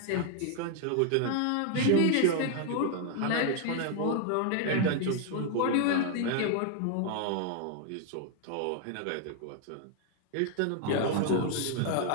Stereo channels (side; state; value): both; different; correlation 0.00